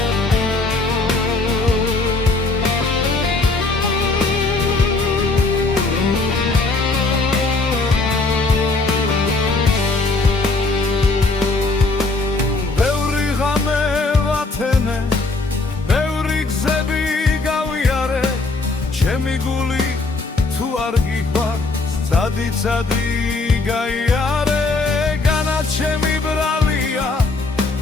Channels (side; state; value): right; quieter; 3.5 dB